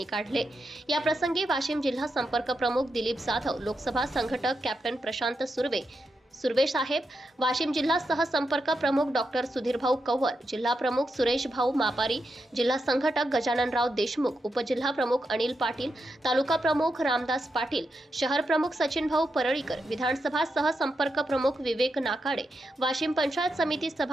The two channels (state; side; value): normal; both; correlation 0.85